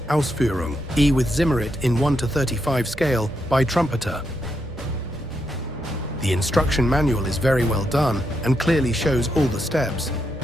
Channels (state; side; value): noise; right; rumble, 17 dB below the sound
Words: Ausf E with Zimmerit in 1:35 scale by Trumpeter. The instruction manual is very well done and clearly shows all the steps,